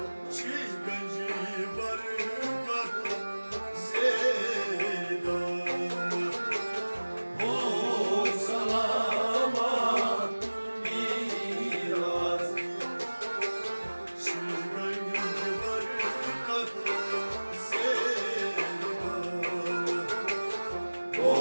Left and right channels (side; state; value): both; inverted; correlation -1.00